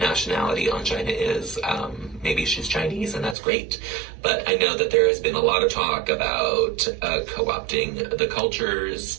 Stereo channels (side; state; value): left; drops out; at 3.4 s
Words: nationality Angina is. Maybe she's Chinese, and that's great. But I know that there has been a lot of talk about co-opting the